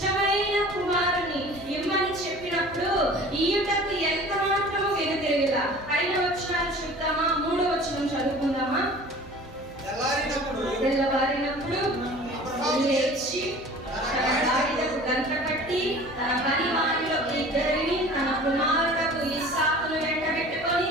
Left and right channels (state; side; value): normal; both; correlation 0.44